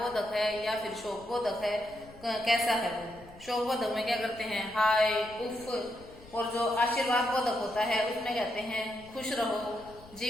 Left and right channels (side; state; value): left; noise; rumble, 21 dB below the sound